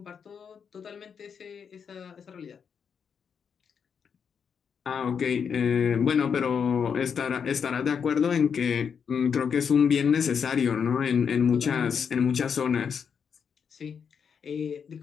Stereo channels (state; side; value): quieter; right; 6.8 dB